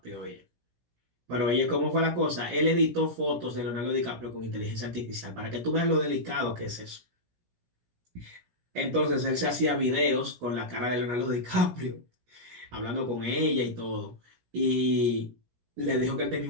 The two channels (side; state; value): left; late; 17 ms